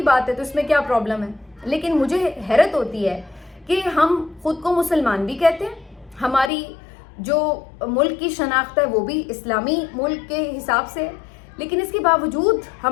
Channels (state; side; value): drops out; right; at 6.5 s